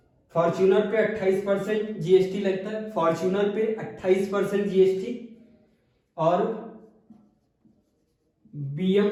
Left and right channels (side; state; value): both; identical; correlation 1.00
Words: फॉर्च्यूनर पे 28% जीएसटी लगता है, फॉर्च्यूनर पे 28% जीएसटी और